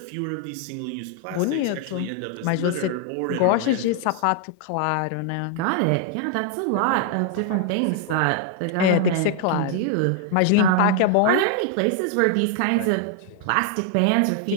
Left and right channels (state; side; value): different; both; correlation 0.00